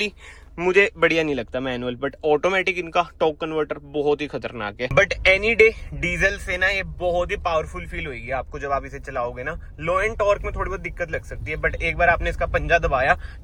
मुझे बढ़िया नहीं लगता मैनुअल, बट ऑटोमेटिक इनका टॉर्क कन्वर्टर बहुत ही खतरनाक है। बट एनी डे डीजल से ना ये बहुत ही पावरफुल फील होगी आपको जब आप इसे चलाओगे ना। लो एंड टॉर्क में थोड़ी बहुत दिक्कत लग सकती है, बट एक बार आपने इसका पंजा दबाया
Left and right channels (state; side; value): identical; both; correlation 1.00